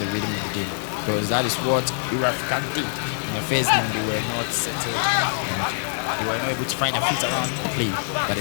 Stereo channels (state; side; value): silent; right; digital silence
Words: rhythm of the game, because that is what Africa did. In the first game, they were not settled and they were not able to find a fit around play. But